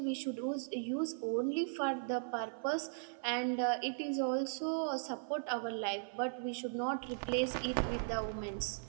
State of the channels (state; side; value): silent; left; 53 dB below the other